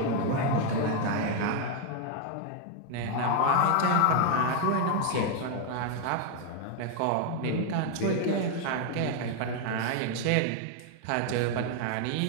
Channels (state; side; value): different; both; correlation 0.01